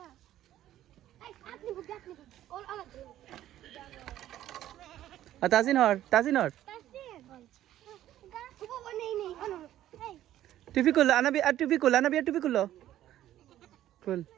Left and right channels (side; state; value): left; quieter; 12.9 dB